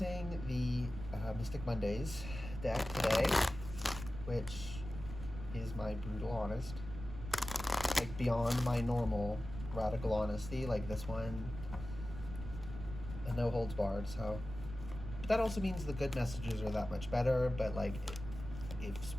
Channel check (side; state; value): right; noise; rumble, 10 dB below the sound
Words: the Mystic Mondays deck today, which is my brutal honest, like beyond my normal radical honesty, like this one, and no holds barred. So that also means the good messages are that much better, but like if